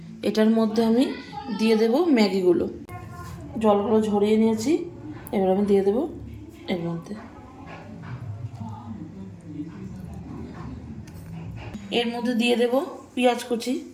এটার মধ্যে আমি দিয়ে দেব ম্যাগিগুলো। জলগুলো ঝরিয়ে নিয়েছি, এবার আমি দিয়ে দেব এর মধ্যে। এর মধ্যে দিয়ে দেব পেঁয়াজ কুচি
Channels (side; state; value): both; identical; correlation 1.00